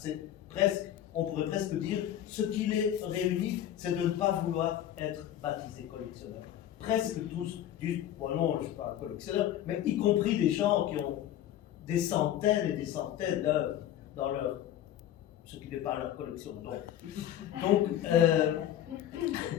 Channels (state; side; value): quieter; right; 11.5 dB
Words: presque, on pourrait presque dire, ce qui les réunit, c'est de ne pas vouloir être baptisé collectionneur. Presque tous disent, bon non, je ne suis pas un collectionneur, mais y compris des gens qui ont des centaines et des centaines d'œuvres dans leur, ce qui n'est pas leur collection.